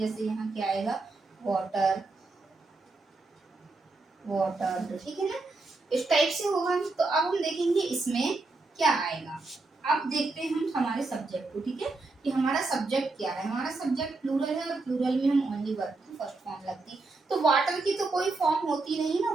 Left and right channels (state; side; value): quieter; left; 3.5 dB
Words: यहाँ क्या आएगा, वाटर, वाटर, ठीक है ना, इस टाइप से होगा। तो अब हम देखेंगे इसमें क्या आएगा। अब देखते हैं हम हमारे सब्जेक्ट को, ठीक है, कि हमारा सब्जेक्ट क्या है। हमारा सब्जेक्ट प्लूरल है और प्लूरल में हम ओनली वर्ब की फर्स्ट फॉर्म लगती है। तो वाटर की तो कोई फॉर्म होती नहीं ना,